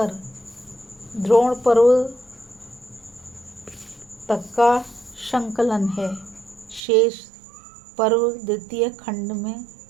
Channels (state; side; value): drops out; left; at 6.8 s